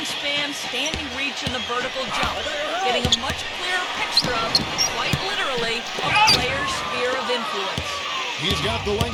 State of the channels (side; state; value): both; identical; correlation 1.00